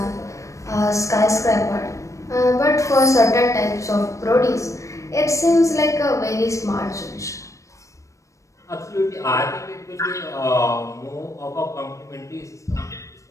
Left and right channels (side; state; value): right; late; 0.15 ms